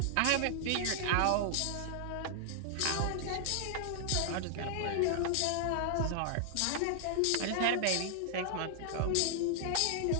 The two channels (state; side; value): different; both; correlation 0.00